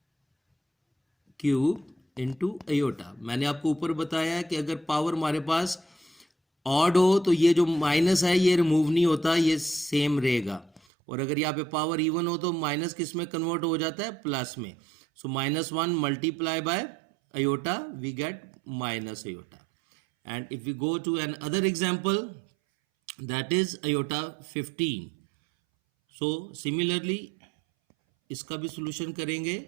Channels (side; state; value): left; drops out; at 10.8 s